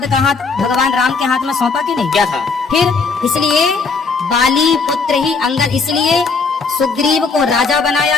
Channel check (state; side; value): quieter; right; 4.6 dB